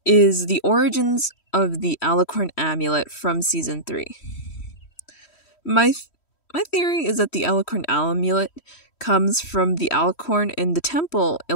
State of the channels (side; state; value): right; late; 3.1 ms